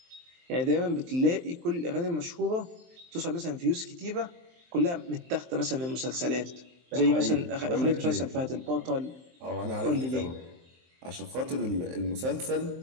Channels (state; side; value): late; left; 23 ms